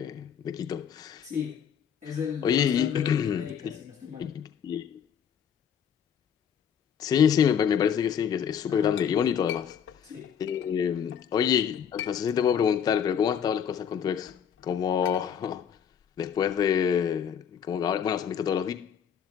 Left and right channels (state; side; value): quieter; right; 8.1 dB